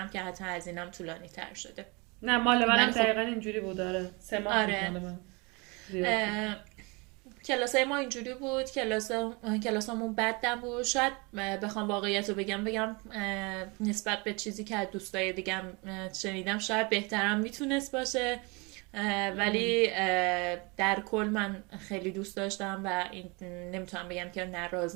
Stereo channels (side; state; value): left; quieter; 28.2 dB